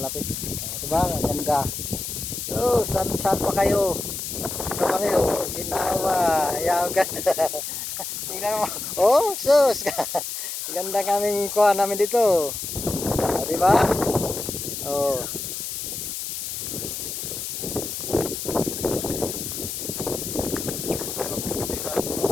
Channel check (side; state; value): left; noise; hiss, 5 dB below the sound